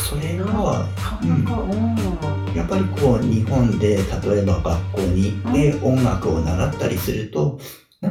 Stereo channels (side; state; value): both; identical; correlation 1.00